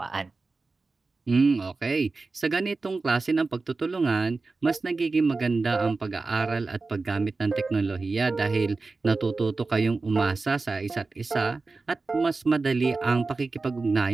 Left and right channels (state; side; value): quieter; left; 3.8 dB